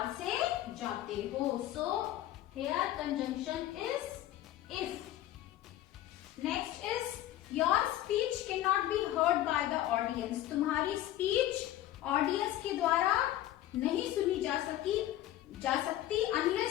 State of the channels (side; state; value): right; quieter; 13.6 dB